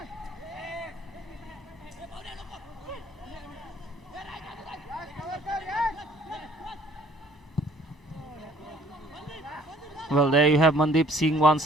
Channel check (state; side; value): normal; both; correlation 0.57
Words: Well, there you have Mandeep Singh once